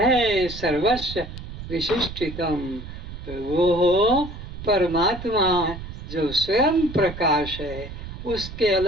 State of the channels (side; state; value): right; noise; rumble, 10 dB below the sound